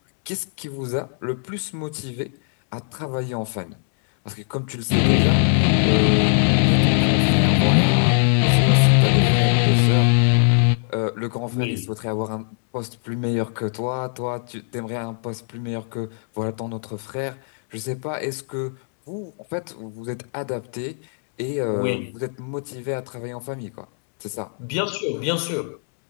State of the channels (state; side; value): silent; right; digital silence